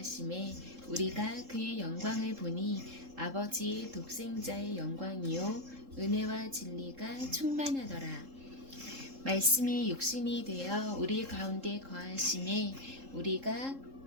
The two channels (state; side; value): late; left; 3.7 ms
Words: 우리가 그의 영광을 보니 아버지의 독생자의 영광이요 은혜와 진리가 충만하더라. 말씀이 육신이 되어 우리 가운데 거하심에